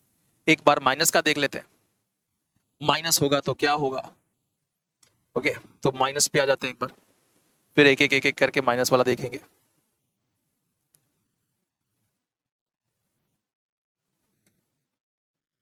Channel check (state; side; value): identical; both; correlation 1.00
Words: एक बार माइनस का देख लेते हैं। माइनस होगा तो क्या होगा? ओके, तो माइनस पे आ जाते हैं एक बार, फिर एक एक करके माइनस वाला देखेंगे।